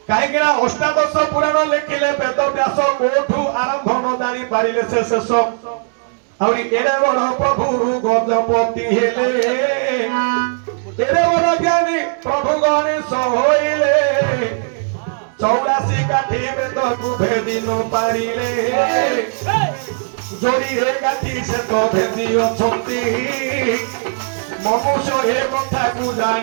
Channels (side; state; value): left; silent; digital silence